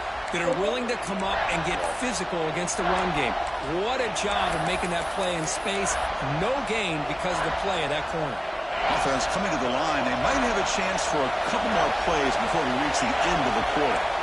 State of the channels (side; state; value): both; identical; correlation 1.00